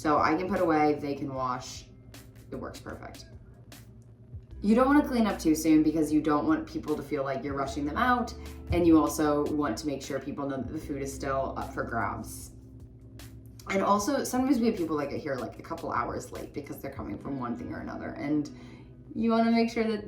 I can put away, they can wash. It works perfect. You don't want to clean up too soon because you don't want people to feel like you're rushing them out, and you also want to make sure people know that the food is still up for grabs. And also, sometimes we have people that get here like a couple hours late because they're coming from one thing or another, and you want to make sure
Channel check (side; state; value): both; identical; correlation 1.00